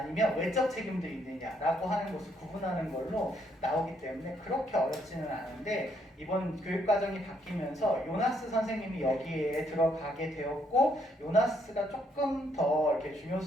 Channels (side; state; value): both; normal; correlation 0.71